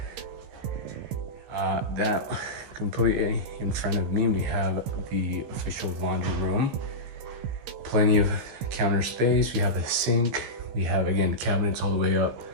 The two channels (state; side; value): late; left; 16 ms